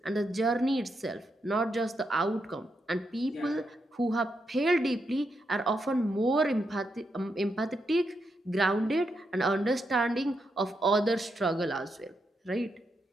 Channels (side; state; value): both; normal; correlation 0.83